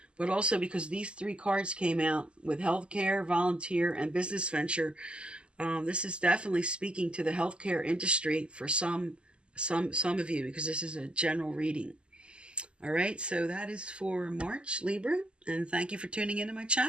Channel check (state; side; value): late; left; 0.052 ms